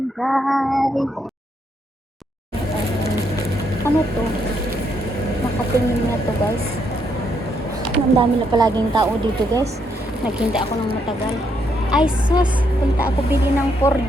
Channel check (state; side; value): normal; both; correlation 0.75